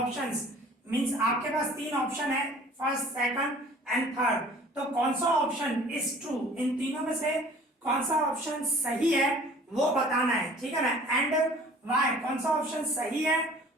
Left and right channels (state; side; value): normal; both; correlation 0.49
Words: means आपके पास तीन ऑप्शन है, फर्स्ट, सेकंड एंड थर्ड। तो कौन सा ऑप्शन इज ट्रू, इन तीनों में से कौन सा ऑप्शन सही है वो बताना है, ठीक है ना। एंड वाई, कौन सा ऑप्शन सही है